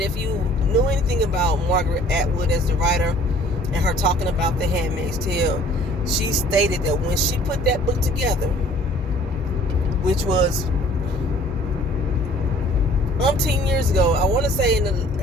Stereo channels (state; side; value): normal; both; correlation 0.53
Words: if you knew anything about Margaret Atwood as the writer and her talking about the Handmaid's Tale, she stated that when she put that book together, which was umpteen years ago, I want to say in